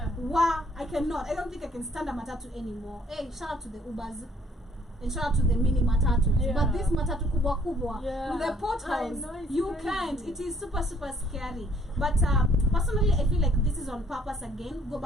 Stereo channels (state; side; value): normal; both; correlation 0.62